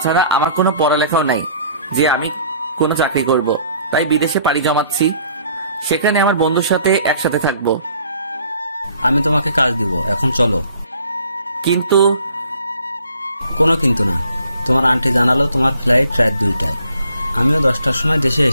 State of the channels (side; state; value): both; inverted; correlation -0.58